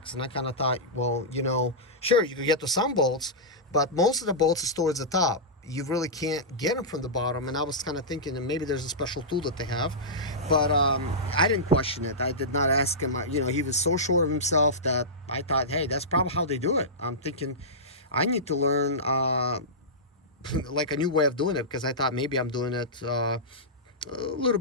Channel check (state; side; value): normal; both; correlation -0.15